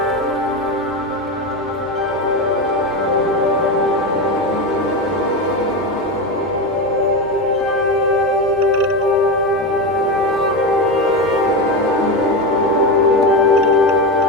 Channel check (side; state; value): both; normal; correlation 0.17